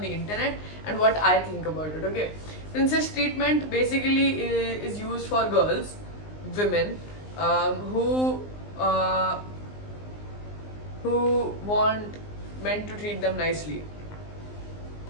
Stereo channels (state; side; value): late; right; 19 ms